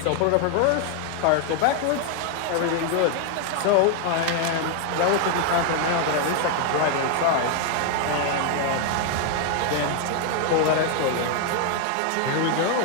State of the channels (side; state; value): both; different; correlation 0.00